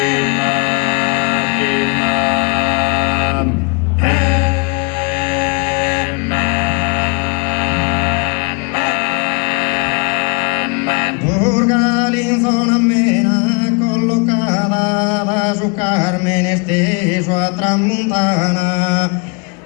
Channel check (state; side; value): quieter; right; 32.4 dB